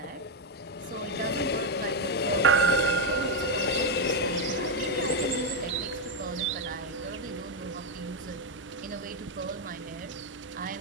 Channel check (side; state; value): both; normal; correlation 0.03